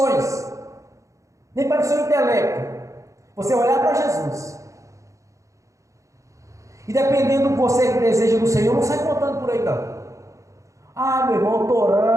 nem para o seu intelecto. Você vai olhar para Jesus. E dependendo do que você deseja do Senhor, não sai contando por aí não. Ah, meu irmão, eu estou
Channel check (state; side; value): late; left; 0.15 ms